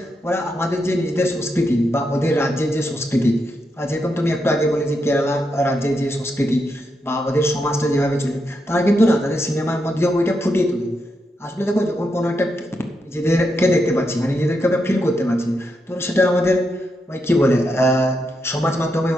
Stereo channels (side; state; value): both; normal; correlation 0.83